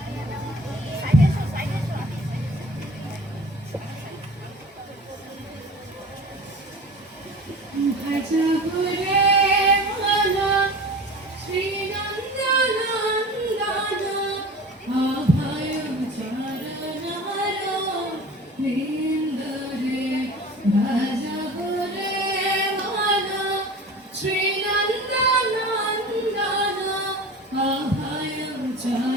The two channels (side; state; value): both; normal; correlation 0.38